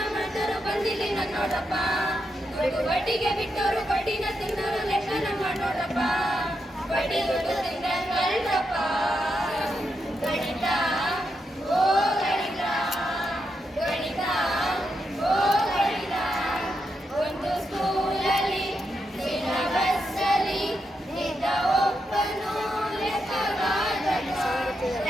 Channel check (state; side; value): normal; both; correlation 0.84